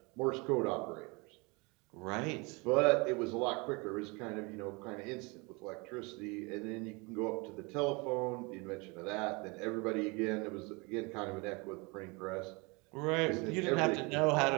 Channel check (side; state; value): left; quieter; 28.0 dB